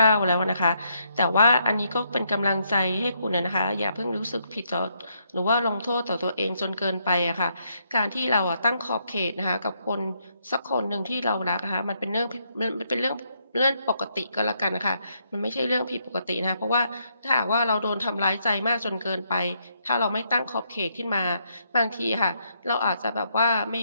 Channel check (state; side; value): inverted; both; correlation -0.76